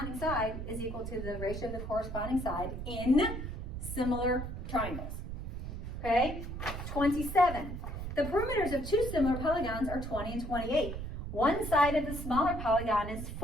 side is equal to the ratio of the corresponding side in similar triangles. Okay? 27. The perimeters of two similar polygons are 20 and 28. One side of the smaller polygon is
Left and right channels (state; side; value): noise; right; rumble, 6 dB below the sound